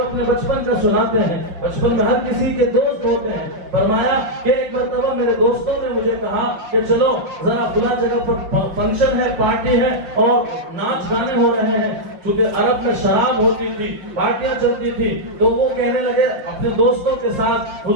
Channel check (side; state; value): left; late; 5.8 ms